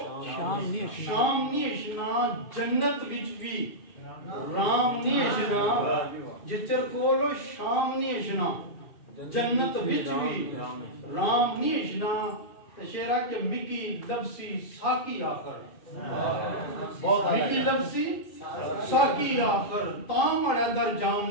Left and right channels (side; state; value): right; late; 2.5 ms